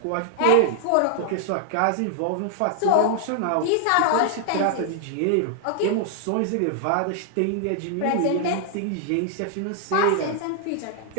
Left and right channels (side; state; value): both; different; correlation 0.00